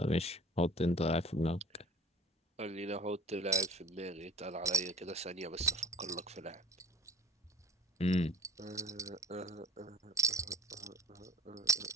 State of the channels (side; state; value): both; normal; correlation 0.46